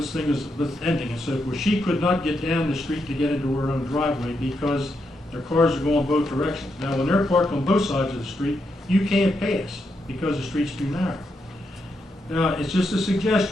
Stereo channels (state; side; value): normal; both; correlation 0.82